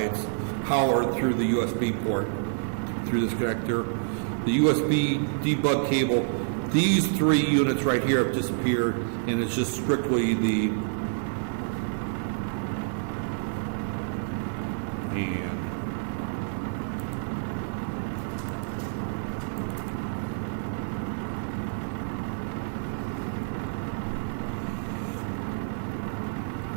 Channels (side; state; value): left; silent; digital silence